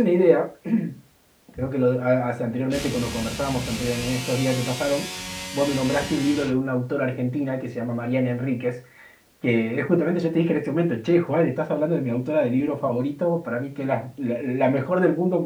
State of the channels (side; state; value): both; identical; correlation 1.00